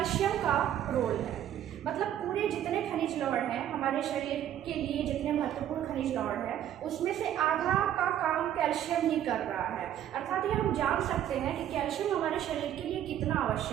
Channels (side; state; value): left; quieter; 11.0 dB